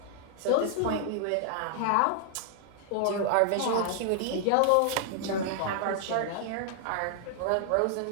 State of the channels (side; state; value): both; different; correlation 0.00